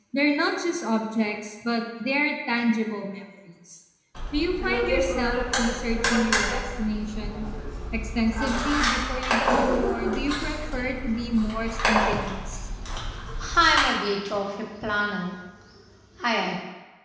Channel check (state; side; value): identical; both; correlation 1.00